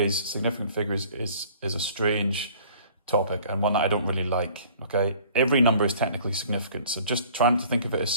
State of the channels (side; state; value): both; inverted; correlation -0.51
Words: significant figures is a strange topic and one that I don't really like. Okay, every number is technically significant, so just trying to think of it as